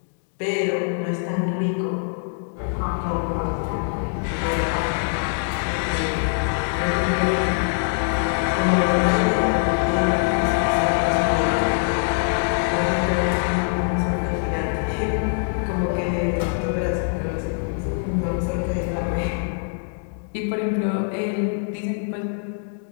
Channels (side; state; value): right; silent; digital silence